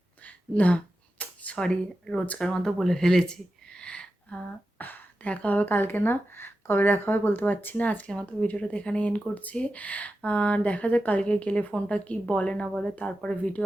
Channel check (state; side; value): normal; both; correlation 0.91